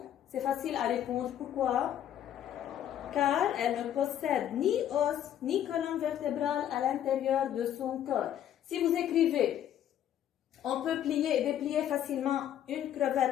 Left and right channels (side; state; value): right; quieter; 10.7 dB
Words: c'est facile à répondre. Pourquoi? Car elle ne possède ni os ni colonne vertébrale à l'intérieur de son corps. Si vous écrivez on peut plier et déplier facilement une